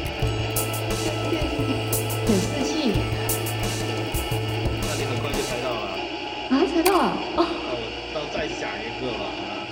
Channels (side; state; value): both; identical; correlation 1.00